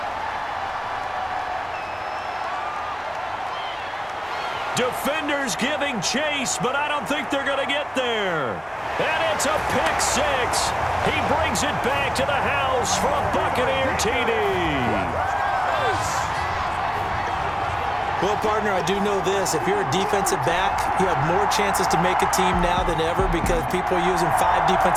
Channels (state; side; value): identical; both; correlation 1.00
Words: Defenders giving chase, but I don't think they're going to get there. And it's a pick 6. He brings it back to the house for a Buccaneer TD. Well, partner, I do know this. If you're a defensive back, you have more chances to make a team now than ever because people are using 5